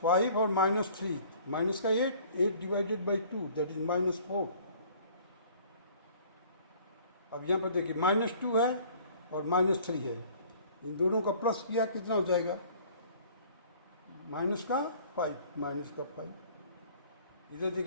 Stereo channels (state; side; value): inverted; both; correlation -0.52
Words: और -3, माइनस का 8 डिवाइडेड बाई 2 दैट इज -4। अब यहाँ पर देखिए -2 है और -3 है, इन दोनों का प्लस किया कितना हो जाएगा, -5। इधर